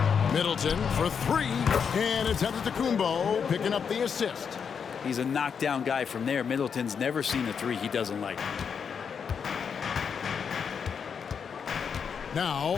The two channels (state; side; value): quieter; right; 6.7 dB